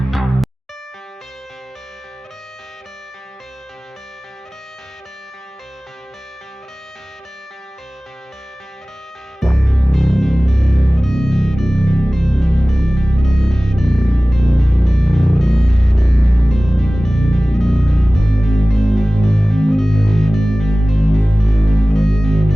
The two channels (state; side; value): normal; both; correlation 0.98